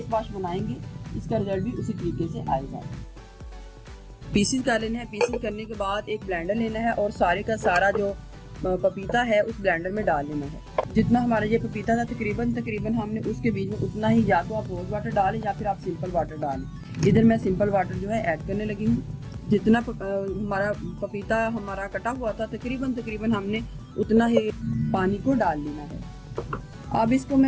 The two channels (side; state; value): both; identical; correlation 1.00